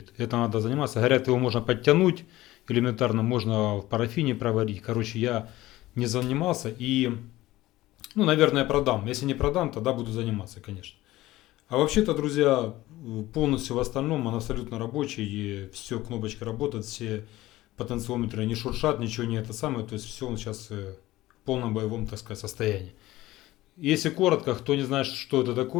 это надо заниматься, говорят, его можно подтянуть, элементарно можно в парафине проварить, короче, я не занимался и, ну, наверное, продам, если не продам, тогда буду заниматься, конечно. А вообще-то, друзья, полностью в остальном он абсолютно рабочий, и все, кнопочка работает, все потенциометры не шуршат, ничего не это самое, то есть все он сейчас в полном боевом, так сказать, состоянии. Если коротко, кто не знает, что это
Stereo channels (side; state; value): right; quieter; 17.1 dB